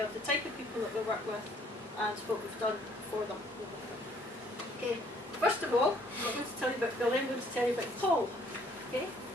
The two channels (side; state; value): both; normal; correlation 0.62